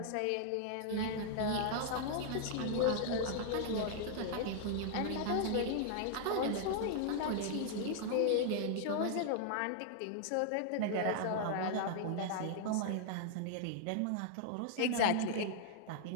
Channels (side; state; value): both; different; correlation -0.01